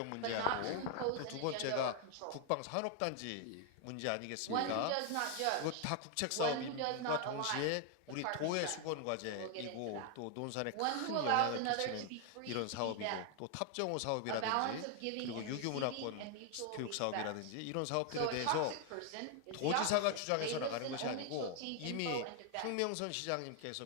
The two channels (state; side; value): different; both; correlation 0.00